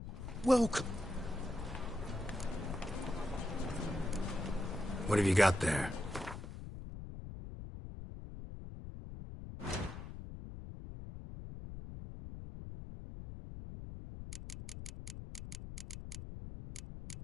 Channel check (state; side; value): noise; left; rumble, 9 dB below the sound